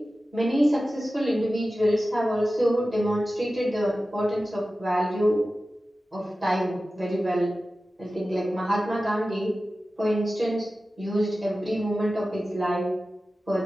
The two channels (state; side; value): normal; both; correlation 0.95